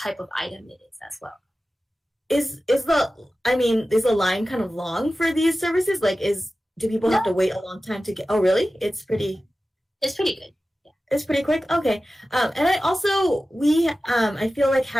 of item it is as well. Is the line kind of long for these services? Like, do people have to wait a long time to get? Oh, really? It's pretty good. Yeah. It's pretty quick. Okay. And I feel like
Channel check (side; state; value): both; normal; correlation 0.95